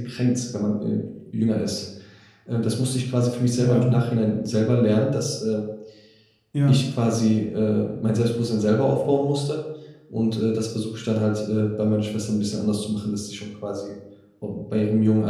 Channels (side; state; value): both; identical; correlation 1.00